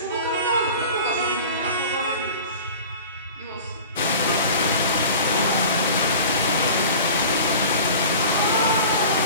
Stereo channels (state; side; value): inverted; both; correlation -0.39